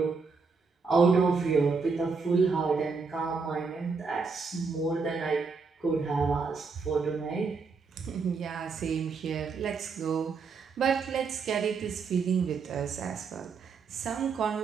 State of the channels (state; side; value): quieter; left; 4.9 dB